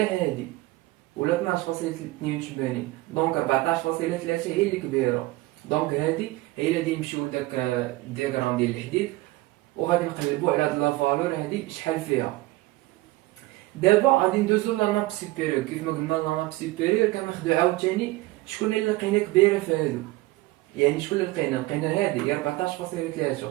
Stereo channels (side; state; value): left; quieter; 19.6 dB